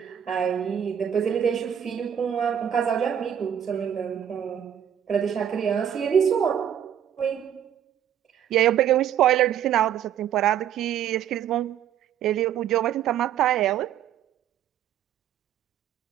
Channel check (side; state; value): left; quieter; 9.6 dB